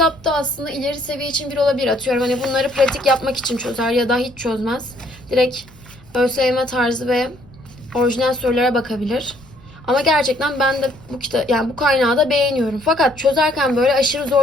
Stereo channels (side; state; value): left; noise; rumble, 26 dB below the sound